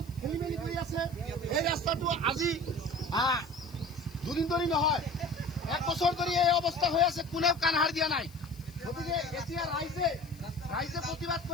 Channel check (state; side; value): noise; left; hiss, 24 dB below the sound